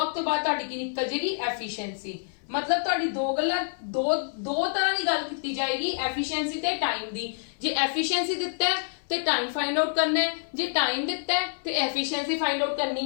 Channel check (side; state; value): right; silent; 60 dB below the other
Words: ਤੋਂ ਬਾਅਦ ਤੁਹਾਡੀ ਕੀ ਨਿਕਲ ਜਾਏਗੀ, ਐਫੀਸ਼ੀਐਂਸੀ। ਮਤਲਬ ਤੁਹਾਡੀ ਦੋ ਤਰ੍ਹਾਂ ਦੀ ਗੱਲ ਕੀਤੀ ਜਾਏਗੀ, ਐਫੀਸ਼ੀਐਂਸੀ ਤੇ ਟਾਈਮ ਦੀ। ਜੇ ਐਫੀਸ਼ੀਐਂਸੀ ਦਿੱਤਾ ਹੈ ਤੇ ਟਾਈਮ ਫਾਈਂਡ ਆਊਟ ਕਰਨਾ ਹੈ, ਜੇ ਟਾਈਮ ਦਿੱਤਾ ਹੈ ਤੇ ਐਫੀਸ਼ੀਐਂਸੀ ਫਾਈਂਡ ਆਊਟ